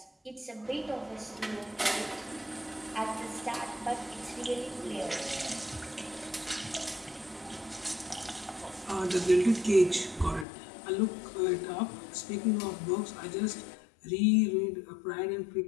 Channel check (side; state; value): right; drops out; at 10.5 s